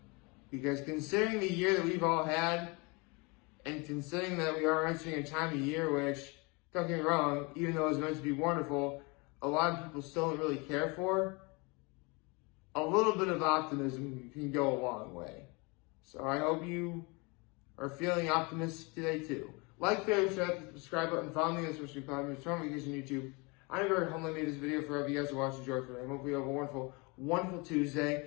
Because considering the year that we've all had, and considering that we are entering a time of year which, don't get me wrong, even though it's meant to be wonderful, a lot of people still don't really care for, a little bit of optimism can go a long way. So I hope you are feeling optimistic today too. Like, favorite, share, hit the subscribe button, follow me on social media platforms, turn on notifications on YouTube. I'm very humbly made this video for you guys to watch and enjoy today. I hope you have a wonderful, wonderful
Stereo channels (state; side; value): quieter; right; 28.4 dB